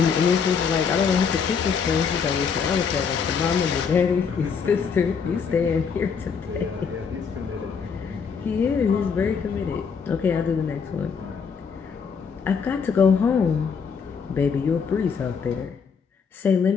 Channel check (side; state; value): right; quieter; 6.1 dB